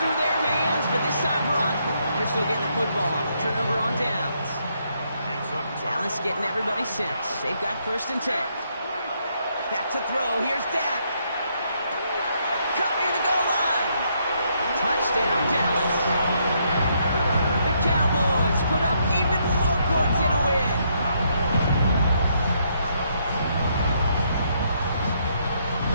through their hands, but this time, Brock, they're still getting the football off. Turnover on downs. Dallas getting everybody sent. They've got 1st and 10. Back to throw. Here's Dak. Caught near the goal line. Touchdown, Dallas. The Cowboys put up even more points in a win.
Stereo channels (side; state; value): both; inverted; correlation -0.74